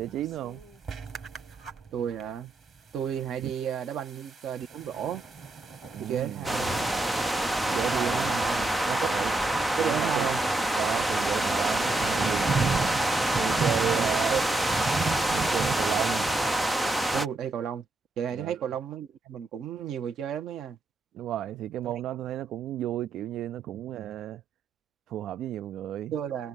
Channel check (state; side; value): quieter; left; 3.1 dB